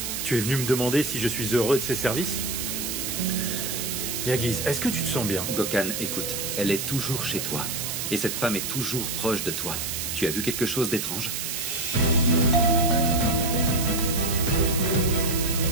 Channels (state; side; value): noise; right; hiss, 3 dB below the sound